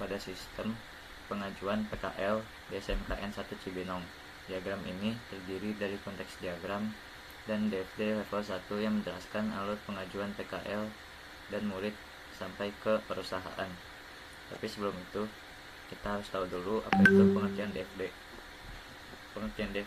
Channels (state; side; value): identical; both; correlation 1.00